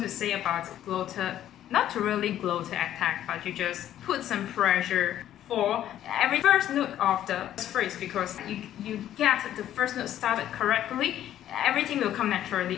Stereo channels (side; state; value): right; quieter; 11.8 dB